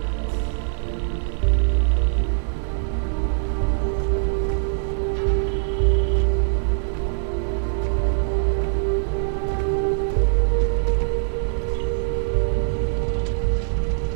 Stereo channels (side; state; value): left; silent; digital silence